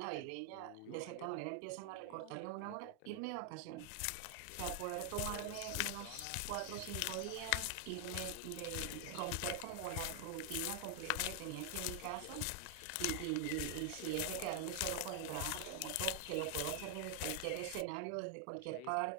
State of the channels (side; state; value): both; different; correlation 0.00